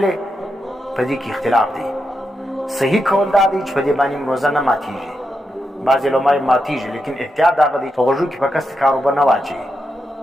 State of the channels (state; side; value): normal; both; correlation 0.85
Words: په دې کې اختلاف دی. صحیح قول دا دی چې په دې باندې روزه نه ماتیږي، بعضې علما ماتیږي، لیکن احتیاط دغه دی په غوږو کې په کستې کار اوبه نه واچوي،